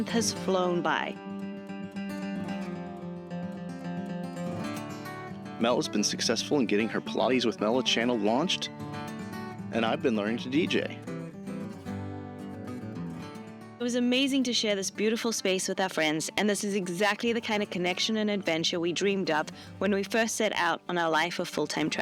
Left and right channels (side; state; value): both; identical; correlation 1.00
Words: has flown by. Mel has been successful in getting her Pilates with Mela channel launched, and I've been learning to DJ. It was amazing to share this beautiful space with our friends, and this is exactly the kind of connection and adventure we dreamed up when we first set out on our life of full-time